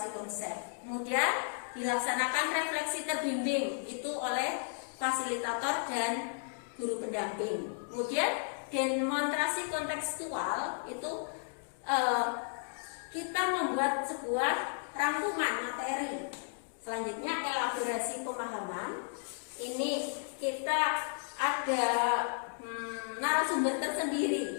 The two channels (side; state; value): right; silent; digital silence